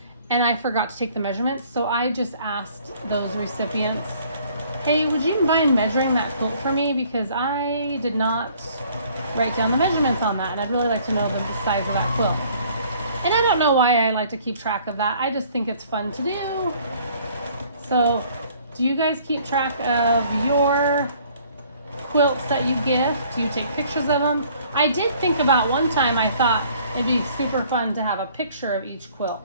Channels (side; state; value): both; inverted; correlation -0.58